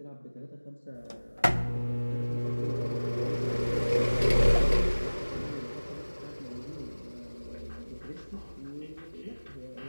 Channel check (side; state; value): both; inverted; correlation -1.00